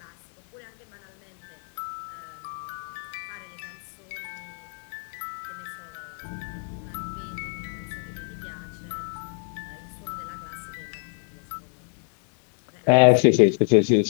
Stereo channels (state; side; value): silent; right; 55 dB below the other